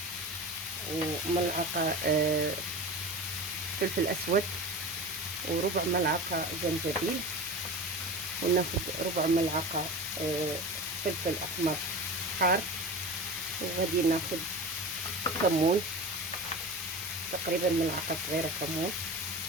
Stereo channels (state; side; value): normal; both; correlation 0.31